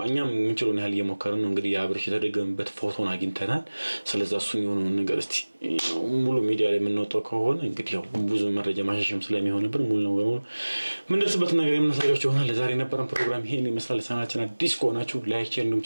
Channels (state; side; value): inverted; both; correlation -1.00